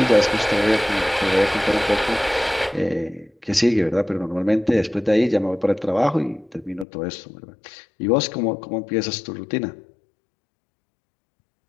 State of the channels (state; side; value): drops out; right; at 6.9 s